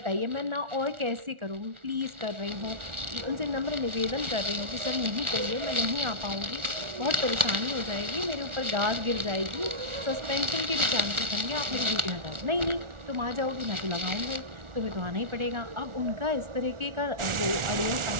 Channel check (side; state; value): left; late; 1.4 ms